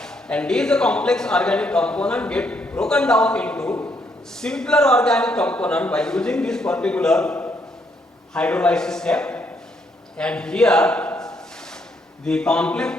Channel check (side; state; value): both; normal; correlation 0.73